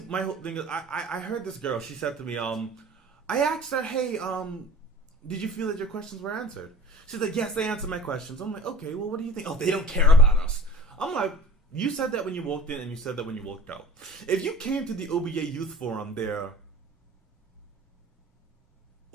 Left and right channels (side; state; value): both; normal; correlation 0.42